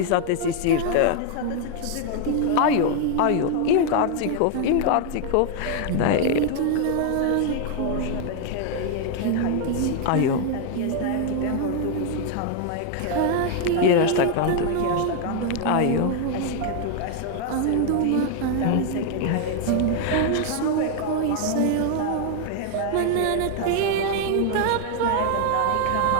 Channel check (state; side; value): different; both; correlation 0.00